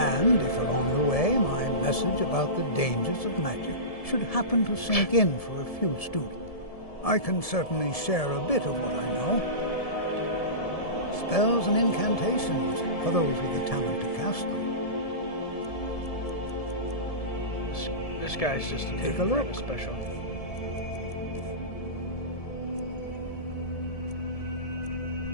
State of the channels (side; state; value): right; late; 1.7 ms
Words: if along the way my message about the dangers of magic should happen to sink in for a few students, I can certainly share a bit of what I know. Spells and incantations for those with the talent to cast them. This guy's just a Take a look. kind of special.